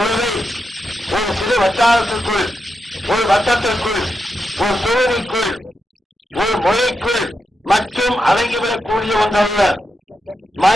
ஒரு சிறு வட்டாரத்திற்குள், ஒரு வட்டத்திற்குள், ஒரு தொகுதிக்குள், ஒரு மொழிக்குள் மற்றும் அடங்கிவிடக்கூடிய ஒன்றல்ல.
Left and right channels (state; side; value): normal; both; correlation 0.86